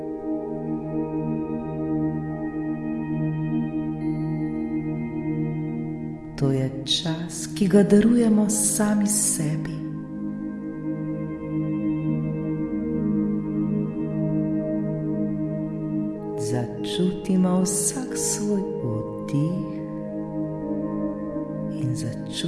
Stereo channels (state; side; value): identical; both; correlation 1.00